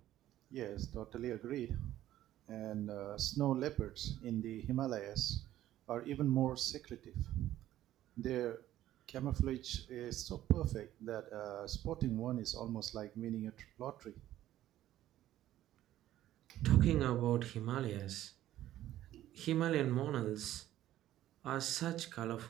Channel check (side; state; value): left; quieter; 13.4 dB